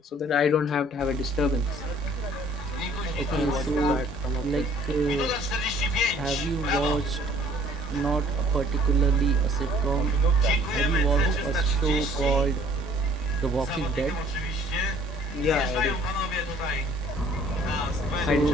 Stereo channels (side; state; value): both; normal; correlation 0.56